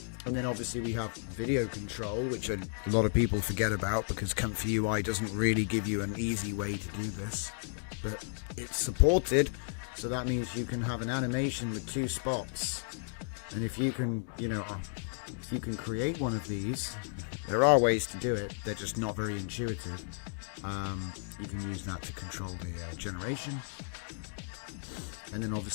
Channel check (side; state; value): right; silent; 55 dB below the other